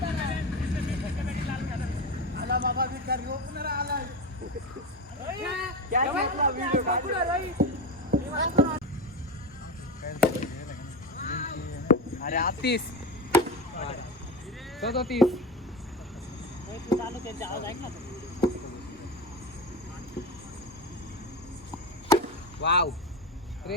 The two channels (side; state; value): both; normal; correlation 0.22